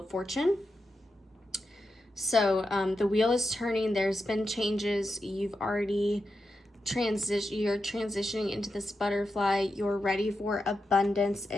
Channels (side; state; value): both; normal; correlation 0.88